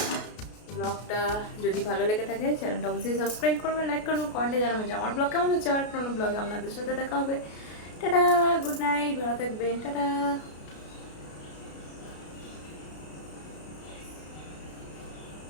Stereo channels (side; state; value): right; late; 33 ms